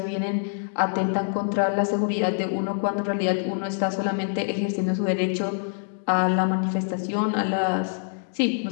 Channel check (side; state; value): right; silent; digital silence